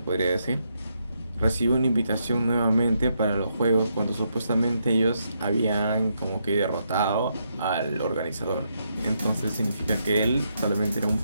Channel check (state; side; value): inverted; both; correlation -0.79